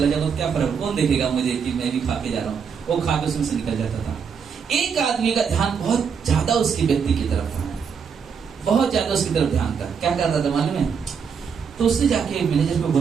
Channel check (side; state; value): left; quieter; 6.5 dB